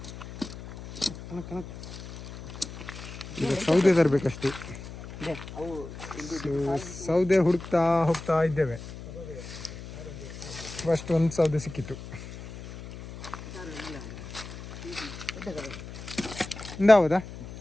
ಸೌದೆ ತರಬೇಕಷ್ಟೇ. ಸೌದೆ ಹುಡುಕ್ತಾ ಹೋಗ್ತಾ ಇದ್ದೇವೆ. ಫಸ್ಟ್ ಒಂದು ಸೌದೆ ಸಿಕ್ಕಿತ್ತು. ಹೌದಾ,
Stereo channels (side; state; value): left; noise; hum, 12 dB below the sound